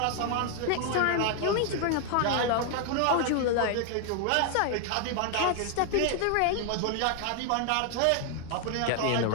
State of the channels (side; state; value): both; different; correlation 0.00